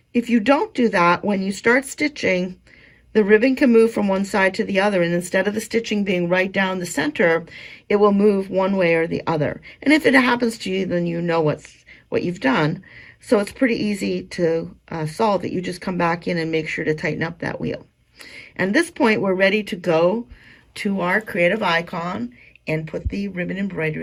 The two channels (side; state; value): both; identical; correlation 1.00